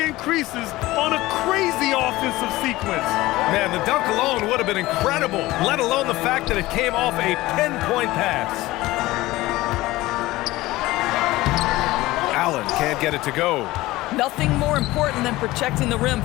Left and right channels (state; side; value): quieter; right; 18.3 dB